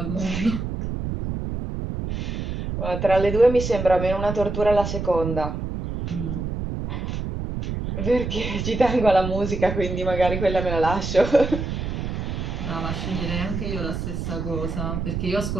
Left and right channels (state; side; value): noise; right; rumble, 4 dB below the sound